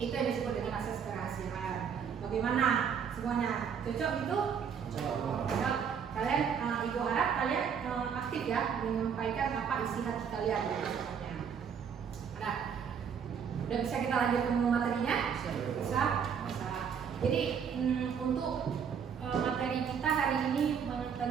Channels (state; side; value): quieter; left; 7.2 dB